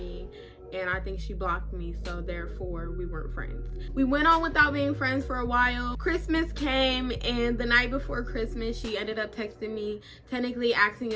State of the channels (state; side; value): identical; both; correlation 1.00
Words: and I think she blocked me, so therefore we weren't friends. We went on without being friends for a while. Christmas came and the night before Christmas she ended up texting me, technically asking